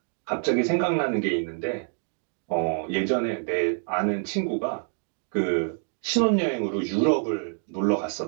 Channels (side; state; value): left; silent; 55 dB below the other